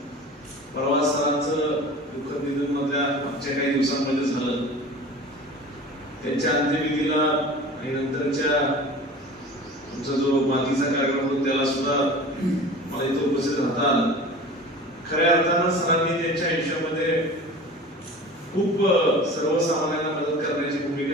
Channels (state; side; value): normal; both; correlation 0.38